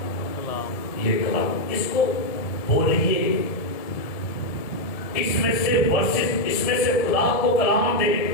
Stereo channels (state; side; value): late; right; 1.7 ms